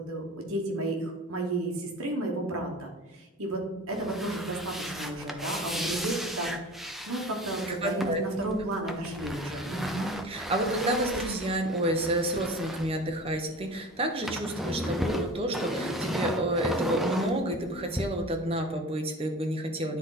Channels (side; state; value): both; normal; correlation 0.37